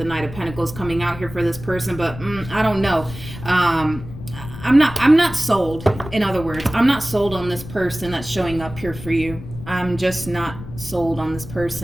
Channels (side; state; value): left; noise; rumble, 13 dB below the sound